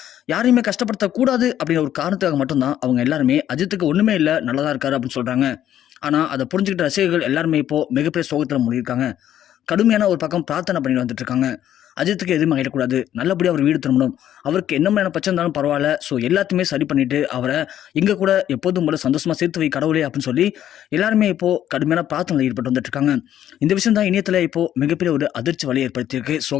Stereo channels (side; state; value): right; quieter; 11.2 dB